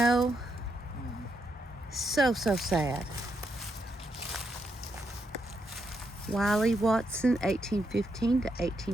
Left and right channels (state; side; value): normal; both; correlation 0.80